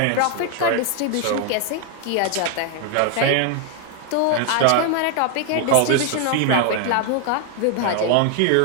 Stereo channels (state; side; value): different; both; correlation 0.00